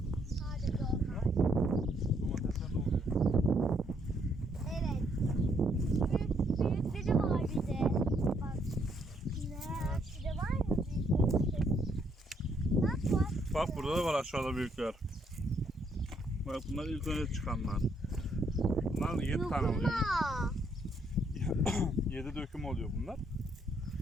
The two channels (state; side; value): normal; both; correlation 0.71